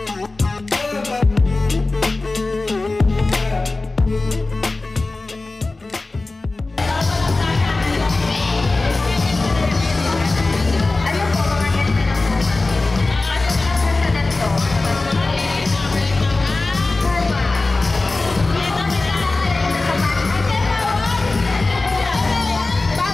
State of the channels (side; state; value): right; quieter; 3.3 dB